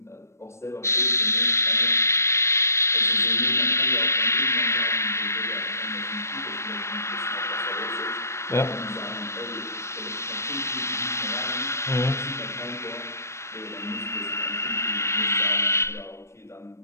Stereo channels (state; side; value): late; right; 0.13 ms